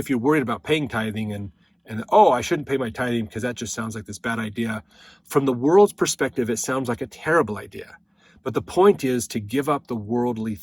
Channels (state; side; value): identical; both; correlation 1.00